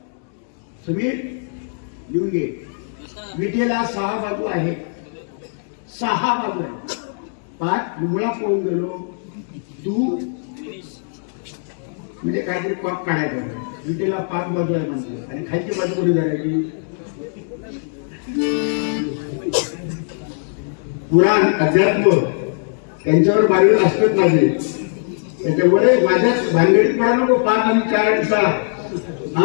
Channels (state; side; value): silent; right; 66 dB below the other